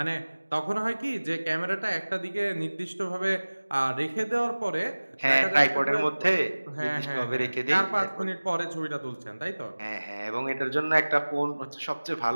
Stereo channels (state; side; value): inverted; both; correlation -1.00